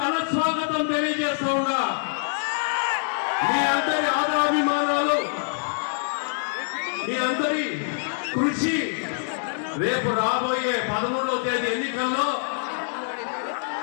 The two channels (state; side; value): silent; right; digital silence